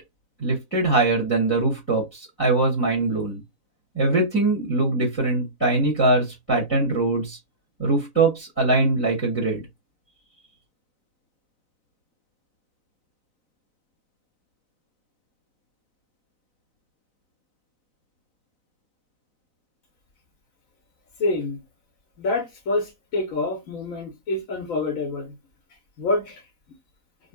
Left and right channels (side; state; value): right; late; 4.0 ms